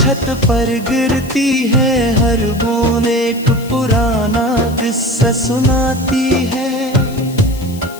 पर गिरती है, हर बूंद एक पुराना किस्सा सुनाती है।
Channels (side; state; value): left; noise; hiss, 19 dB below the sound